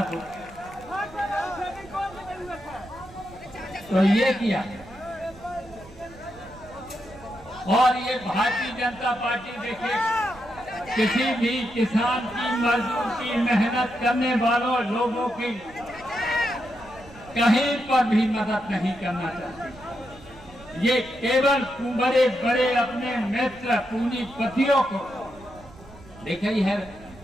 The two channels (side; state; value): right; noise; rumble, 21 dB below the sound